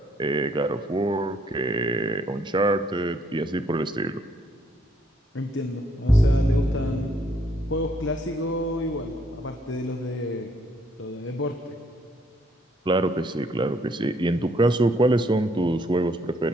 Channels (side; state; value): both; normal; correlation 0.68